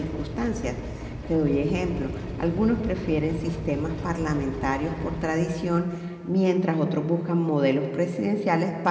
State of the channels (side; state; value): both; identical; correlation 1.00